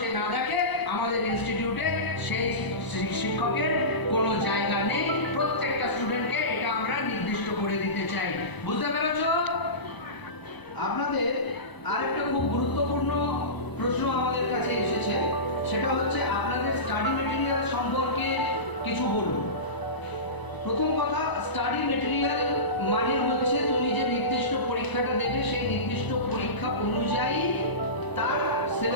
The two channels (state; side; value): late; right; 1.0 ms